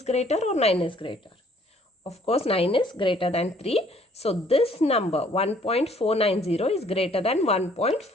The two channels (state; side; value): normal; both; correlation 0.61